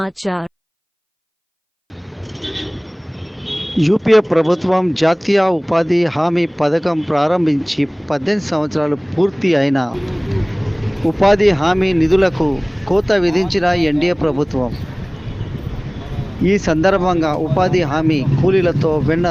యూపీఏ ప్రభుత్వం జాతీయ ఉపాధి హామీ పథకం ప్రారంభించి 18 సంవత్సరాలు పూర్తి అయిన ఉపాధి హామీ నిధులకు కోత విధించిన ఎన్డీఏ ప్రభుత్వం. ఈ సందర్భంగా ఉపాధి హామీ కూలీలతో Venna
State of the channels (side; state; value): both; identical; correlation 1.00